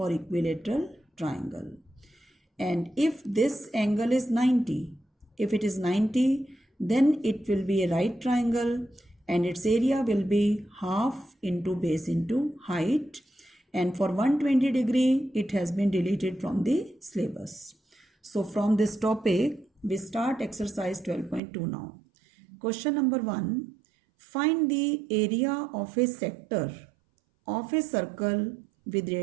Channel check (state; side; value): drops out; left; at 21.4 s